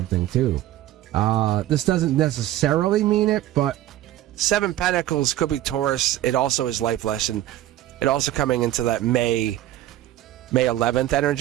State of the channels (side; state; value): left; quieter; 13.9 dB